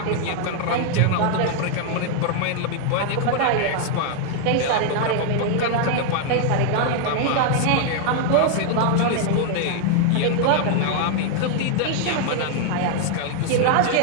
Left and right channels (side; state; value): both; different; correlation 0.00